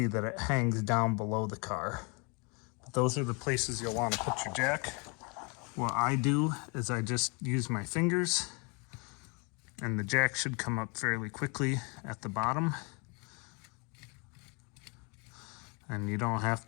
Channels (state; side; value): quieter; right; 32.1 dB